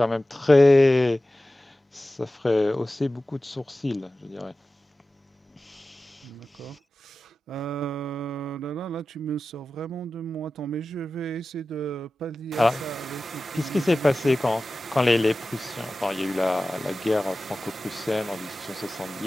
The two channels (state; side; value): normal; both; correlation 0.95